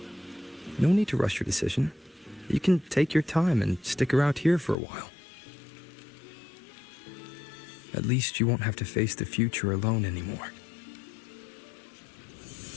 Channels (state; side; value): drops out; right; at 4.8 s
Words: No need to rush your decision. You can take your time and stick around here for a while. At least you won't have to face the future alone anymore.